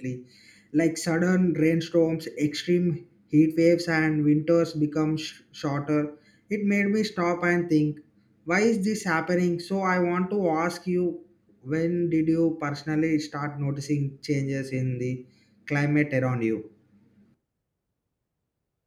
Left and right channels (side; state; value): both; identical; correlation 1.00